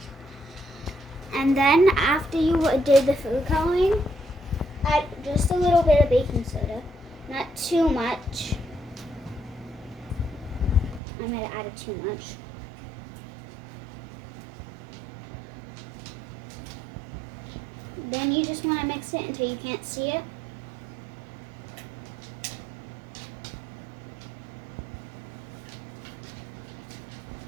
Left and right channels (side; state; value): left; drops out; at 11.0 s